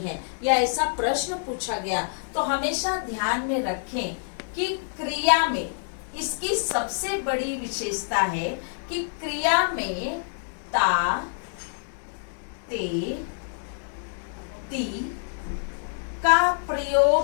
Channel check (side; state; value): right; silent; digital silence